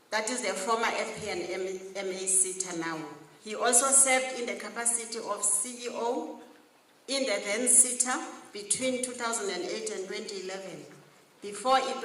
That is the former FP&MA SETA now. He also served in the capacity of CEO in the then SITA between 2008 and 2011, before it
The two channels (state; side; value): identical; both; correlation 1.00